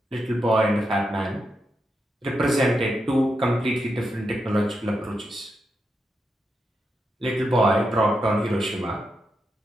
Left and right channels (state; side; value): normal; both; correlation 0.85